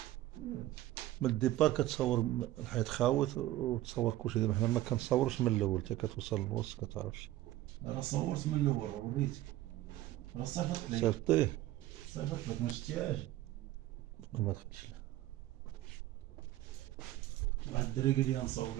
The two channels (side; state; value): left; quieter; 15.0 dB